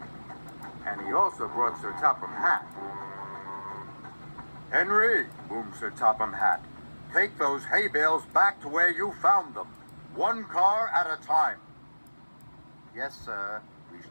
And he also brought Sir Topham Hatt. Henry, boomed Sir Topham Hatt, take those hay bales back to where you found them. One car at a time. Yes, sir, reached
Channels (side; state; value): both; inverted; correlation -1.00